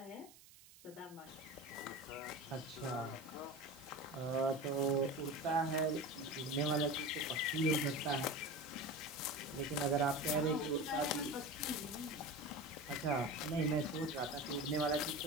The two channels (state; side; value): noise; right; hiss, 21 dB below the sound